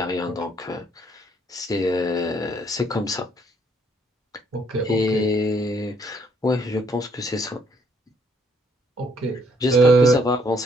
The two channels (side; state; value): both; normal; correlation 0.68